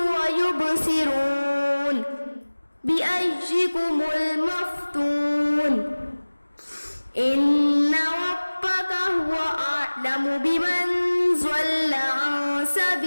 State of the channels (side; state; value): both; inverted; correlation -1.00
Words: ويبصرون بأيكم المفتون. إن ربك هو أعلم بمن ضل عن